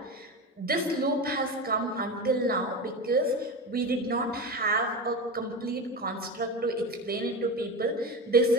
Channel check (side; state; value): both; normal; correlation 0.23